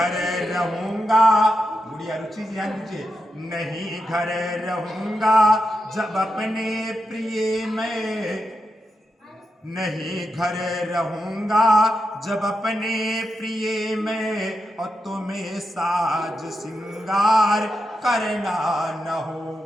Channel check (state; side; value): normal; both; correlation 0.87